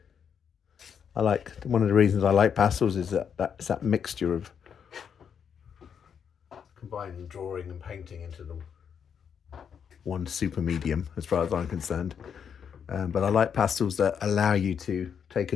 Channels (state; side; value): quieter; right; 7.5 dB